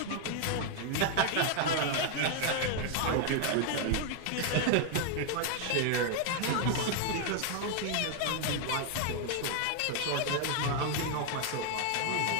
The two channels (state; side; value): different; both; correlation 0.00